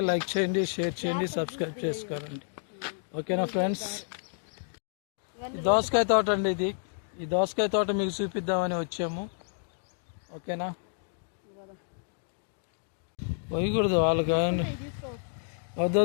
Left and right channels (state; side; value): silent; right; digital silence